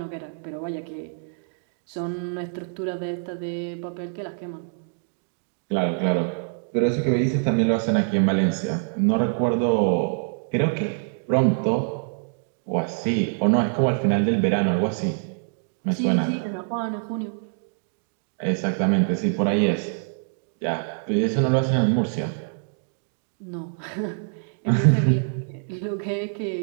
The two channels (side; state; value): left; silent; digital silence